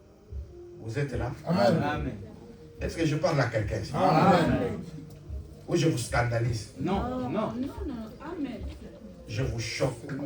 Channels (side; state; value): both; identical; correlation 1.00